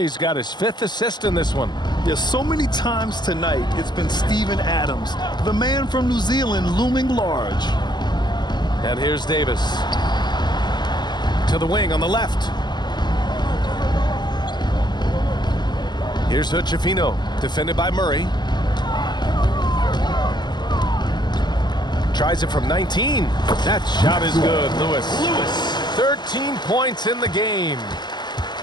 got his 5th assist in this one. There's so many times tonight it's been Steven Adams, the man from New Zealand, looming large. And here's Davis. To the wing on the left. Here's Hood-Schifino, defended by Murray. Tries it from 19. That shot is good, Lewis. 13 points in the game.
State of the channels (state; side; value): late; right; 0.21 ms